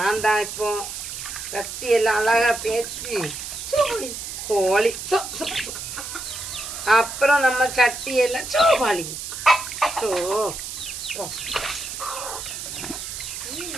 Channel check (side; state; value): right; noise; hiss, 7 dB below the sound